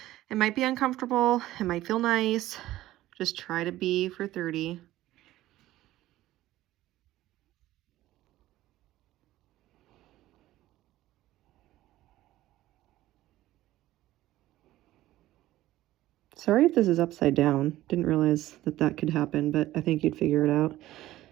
It might be uncomfortable, it might feel nice. Just try to be for 30. Sorry if this is upside down. Didn't realize that that could happen, but I think you'd figure it out.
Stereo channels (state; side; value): quieter; left; 15.4 dB